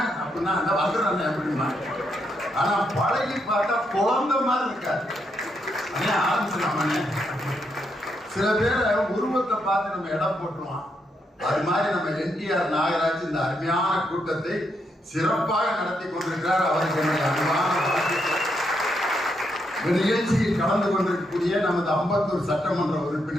அப்படின்னா அந்த வந்துடுறேன் எப்படிமா. ஆனா பழகி பார்த்தா குழந்தை மாதிரி இருக்காது. அண்ணே ஆரம்பிச்சிடலாமே. சில பேரை உருவத்தை பார்த்து நம்ம இடம் போட்டுருவோம். அது மாதிரி நம்ம என்டிஆர் நாகராஜ் இந்த அருமையான கூட்டத்தை சிறப்பாக நடத்தி கொண்டிருக்கிறார். அவருக்கு என்னுடைய அன்பான நிகழ்ச்சியில் கலந்து கொண்டிருக்கக்கூடிய நமது அம்பத்தூர் சட்டமன்ற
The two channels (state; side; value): normal; both; correlation 0.79